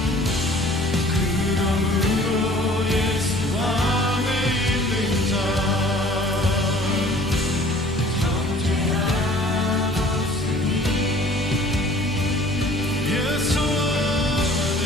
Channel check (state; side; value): normal; both; correlation 0.51